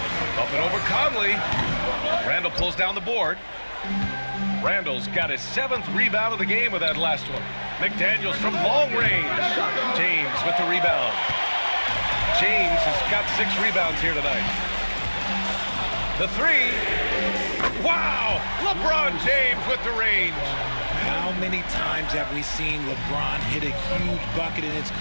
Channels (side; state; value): both; inverted; correlation -1.00